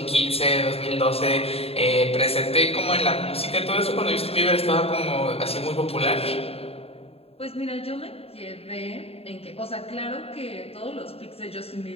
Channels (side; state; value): right; late; 0.29 ms